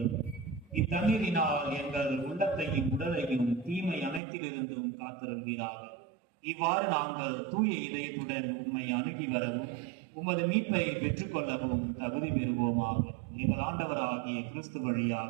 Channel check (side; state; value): left; drops out; at 4.2 s